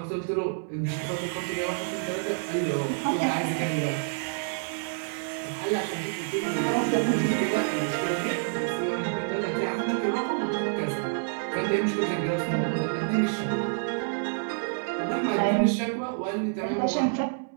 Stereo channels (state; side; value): silent; left; 59 dB below the other